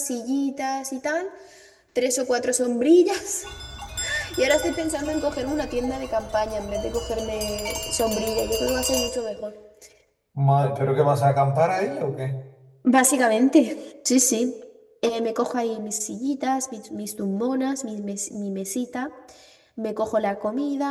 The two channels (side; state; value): both; identical; correlation 1.00